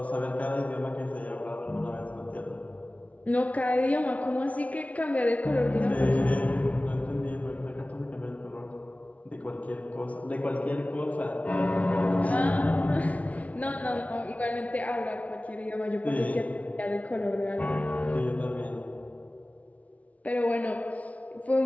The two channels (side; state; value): right; late; 0.068 ms